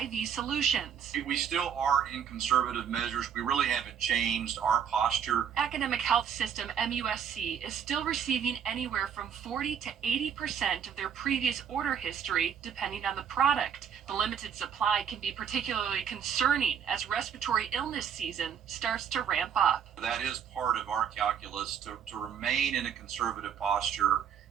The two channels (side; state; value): left; quieter; 8.1 dB